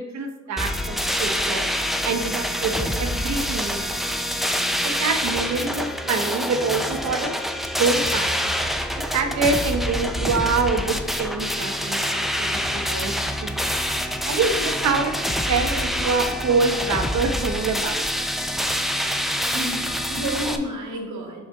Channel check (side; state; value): both; normal; correlation 0.40